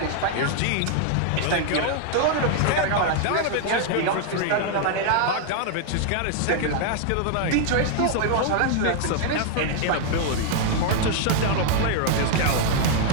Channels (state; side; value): different; both; correlation 0.00